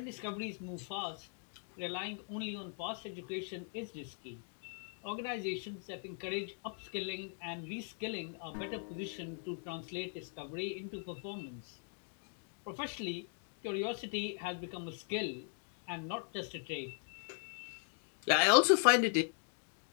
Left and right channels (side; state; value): right; silent; 51 dB below the other